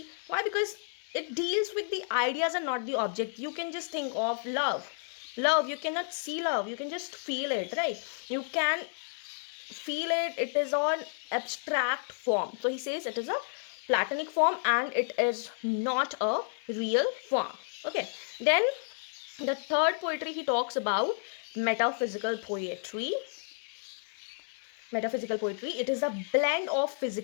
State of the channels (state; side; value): silent; right; 57 dB below the other